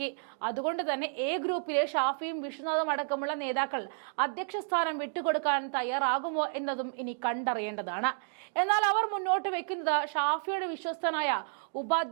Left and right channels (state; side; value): silent; left; digital silence